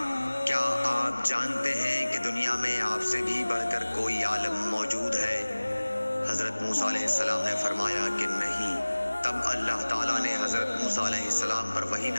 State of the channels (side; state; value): both; inverted; correlation -1.00